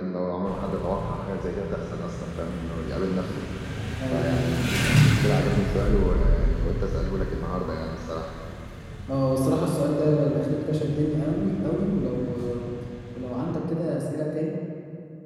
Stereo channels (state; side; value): identical; both; correlation 1.00